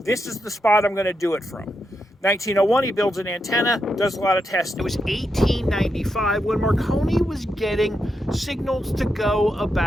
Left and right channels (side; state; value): both; normal; correlation 0.84